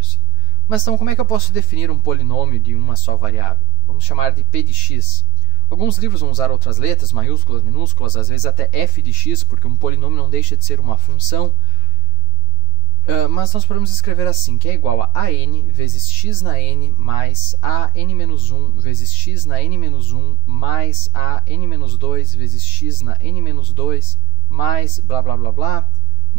Mas então, como é que eu posso definir um polinômio de uma só variável? Vamos chamar de p de x. Alguns livros vão usar outras letras, maiúsculas, minúsculas, às vezes até f de x, porque um polinômio não deixa de ser uma função. Mas nós podemos escrever assim, que é igual a n vezes x na n mais a n-1 vezes x na n-1 mais a n-2 vezes x na n-2 mais blá blá blá blá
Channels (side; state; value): right; late; 9.3 ms